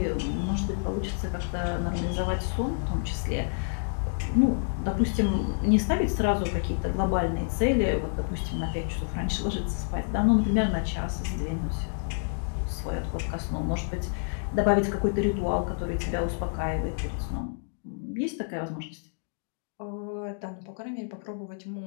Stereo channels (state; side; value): silent; right; digital silence